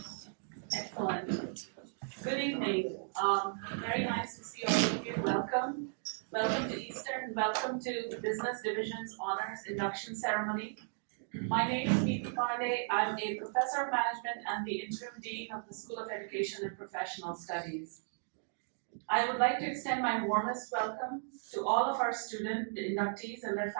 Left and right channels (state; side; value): silent; left; digital silence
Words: Excellent. Good evening. Very nice to see all of you. Welcome. Welcome to Eastern. Welcome to the Business Division's Honors Induction Ceremony. My name is Neeti Pandey. I'm a professor of management and the interim dean of the School of Education and Professional Studies. I would like to extend my warmest welcome to all of our student inductees and their